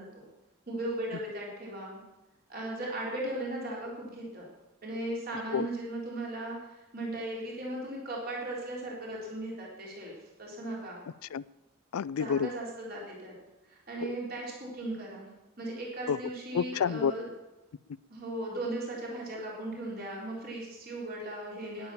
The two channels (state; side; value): normal; both; correlation 0.13